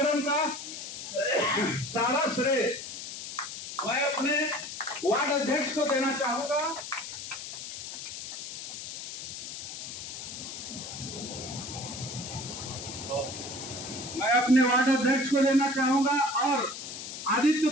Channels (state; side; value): noise; left; hiss, 9 dB below the sound